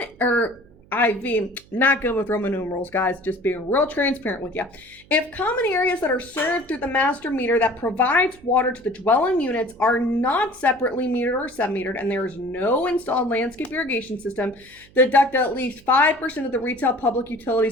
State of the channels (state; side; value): noise; right; hum, 27 dB below the sound